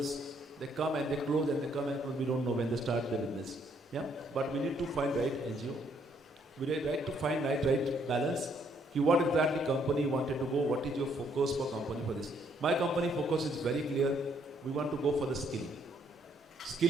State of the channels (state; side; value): normal; both; correlation 0.69